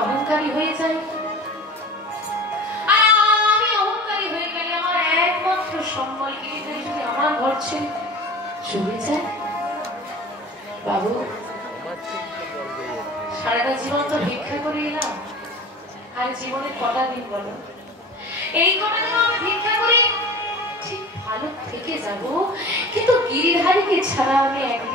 অহংকারী হয়ে যাই, আর আমি অহংকারী হয়ে গেলে আমার একমাত্র সম্বল গিরিধারী যদি আমার ঘর ছেড়ে চলে যায়, বাবু সারাটা জীবন তো ভিক্ষা করে এলাম, আর জীবনে কটা দিন বলো, এই কটা দিন আমি ভিক্ষা করে ঠিক ভালো থেকে যাব, কিন্তু গিরিধারীকে ছাড়া আমি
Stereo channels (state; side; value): normal; both; correlation 0.38